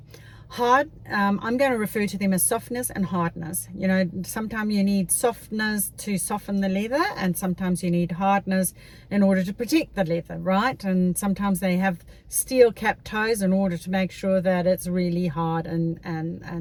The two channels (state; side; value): identical; both; correlation 1.00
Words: Hard, I'm going to refer to them as softness and hardness. You know, sometimes you need softness to soften the leather, and sometimes you need hardness in order to protect the leather, right? And sometimes they have steel cap toes in order to make sure that it's really hard